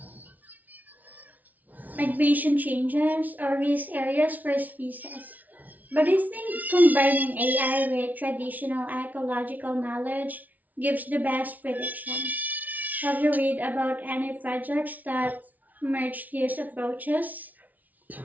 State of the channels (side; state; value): left; late; 0.076 ms